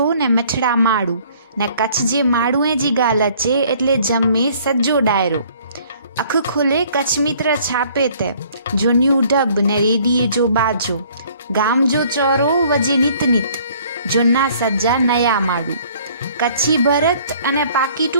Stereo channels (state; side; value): inverted; both; correlation -0.57